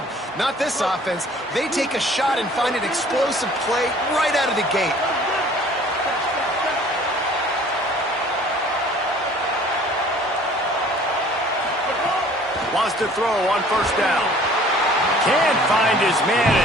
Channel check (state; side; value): normal; both; correlation 0.52